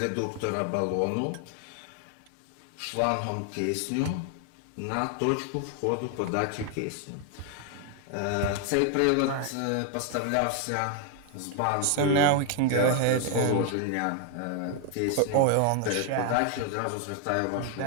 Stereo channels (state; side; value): different; both; correlation 0.00